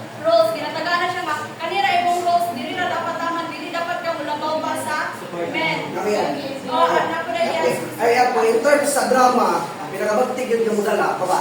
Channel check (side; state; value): both; identical; correlation 1.00